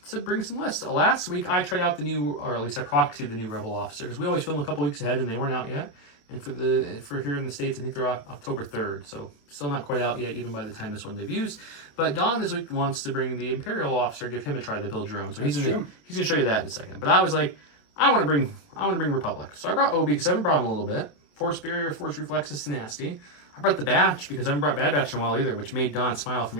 bring some lists. Last week I tried out the new, or at least I proxied the new Rebel Officer, because we always film a couple weeks ahead and they weren't out yet. And for here in the States, I think they're October 3rd, so still not quite out yet, even by the time this one debuts. But Don this week wants to bring the Imperial Officer, give him a try to build your own. So he's gonna show you that in a second. But I was like, I want to bring Republic. So I brought Obi because I haven't brought him a little bit. Force Barrier, Force Reflexes, Tenacity. I brought the Batch because I haven't brought Bad Batch in a while either, which made Don smile from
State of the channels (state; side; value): late; right; 28 ms